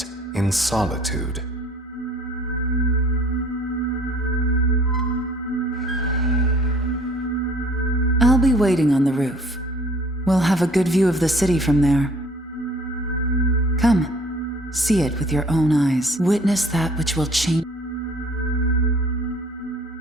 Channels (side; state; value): both; normal; correlation 0.55